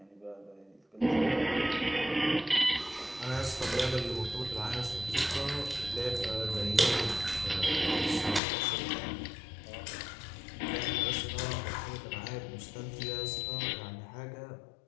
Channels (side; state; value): right; drops out; at 8.4 s